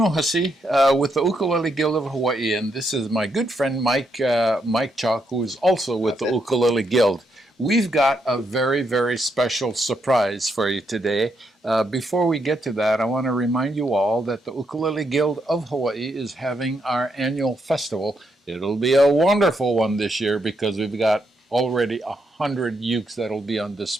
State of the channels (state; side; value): normal; both; correlation 0.79